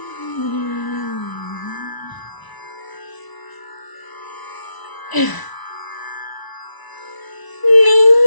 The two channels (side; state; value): right; late; 1.0 ms